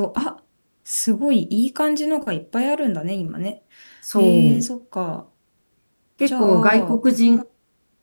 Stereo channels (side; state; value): both; inverted; correlation -1.00